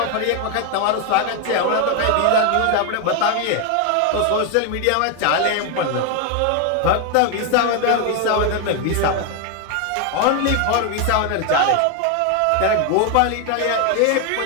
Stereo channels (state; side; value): different; both; correlation 0.01